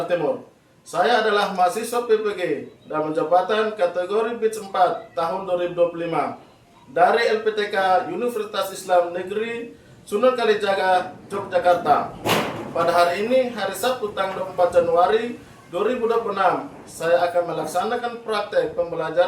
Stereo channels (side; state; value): both; identical; correlation 1.00